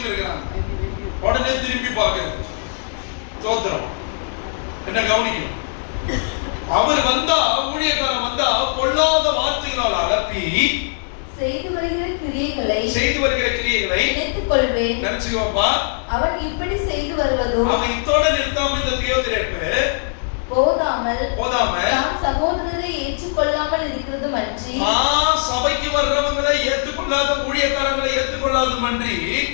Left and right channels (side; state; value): right; silent; digital silence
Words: இருக்கிறாங்க. உடனே திருப்பி பாக்குறது தோத்திரம். என்ன கவனிக்கணும்? அவர் வந்தா, ஊழியக்காரன் வந்தா பொல்லாத வார்த்தைகளால் அலப்பி செய்து வருகிற கிரியைகளை நினைத்துக் கொள்வேன். நினைச்சுக்கோப்பா. அவன் இப்படி செய்து வருவதோ அவன் இத்தோட நிறுத்தாம இந்த தியோதிரேப்பு போதாமல் தான் சகோதரரை ஏற்றுக்கொள்ளாமல் இருக்கிறது மன்றி, சபைக்கு வர்றவங்களை ஏற்றுக்கொள்ளாத ஊழியக்காரங்களை ஏற்றுக்கொள்ளாத மன்றி,